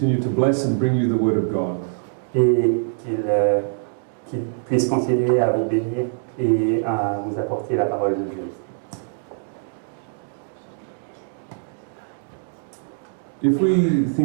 to bless and bring you the word of God. Et qu'il puisse continuer à vous bénir et à vous apporter la parole de Dieu. If we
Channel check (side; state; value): left; silent; digital silence